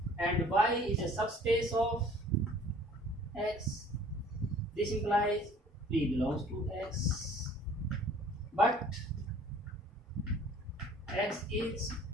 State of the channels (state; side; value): normal; both; correlation 0.52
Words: and y is a subspace of x. This implies p belongs to x, but x is